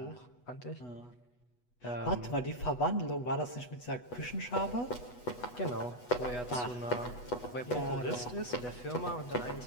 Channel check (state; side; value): late; right; 8.1 ms